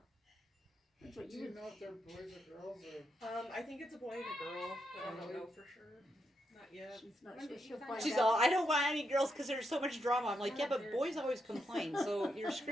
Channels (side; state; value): both; normal; correlation 0.82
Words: That's what Do you you would. know if they're boys or girls or? I think it's a boy and a girl, but I don't know for sure. Not yet. She's not When sure. did you She'll find find She's out. all, I don't want any girls because there's so much drama. I'm like, yeah, but boys always complain, so you're